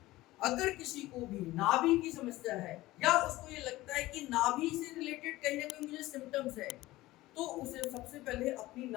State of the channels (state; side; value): quieter; right; 17.8 dB